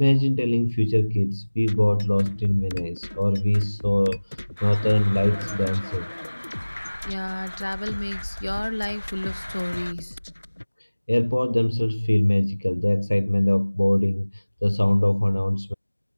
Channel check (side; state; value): both; inverted; correlation -1.00